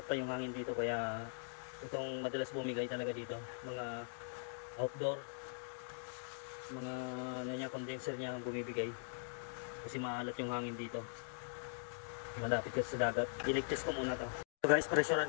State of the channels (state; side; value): silent; right; digital silence